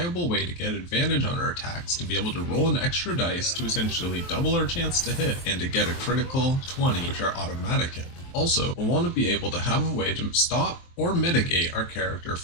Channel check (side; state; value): right; late; 23 ms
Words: way to get advantage on our attacks, to be able to roll an extra dice to essentially double our chance to hit, and to get a critical 20, which are automatic hit. Also, we'll want to be able to have a way to stop or mitigate our character